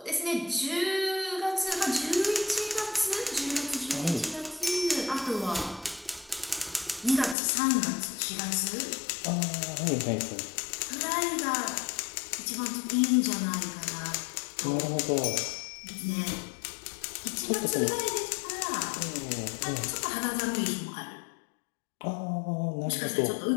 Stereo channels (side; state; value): right; drops out; at 7.4 s